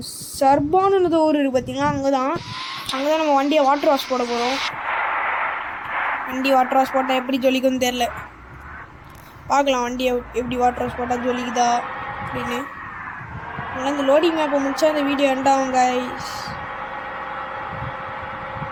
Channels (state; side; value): identical; both; correlation 1.00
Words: சர்பான்னு ஊர் இருக்குது பார்த்தீங்களா, அங்கே தான் நம்ம வண்டியை வாட்டர் வாஷ் போட போகிறோம். வண்டி வாட்டர் வாஷ் போட்டால் எப்படி ஜொலிக்குன்னு தெரில. பார்க்கலாம் வண்டியை எப்படி வாட்டர் வாஷ் போட்டால் ஜொலிக்குதா அப்படின்னு. அதனால் இந்த லோடிங் மேப்பை முடிச்சா இந்த வீடியோ எண்டாகும் கைஸ்.